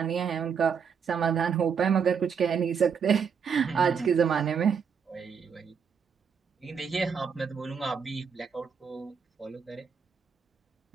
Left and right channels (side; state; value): left; quieter; 6.6 dB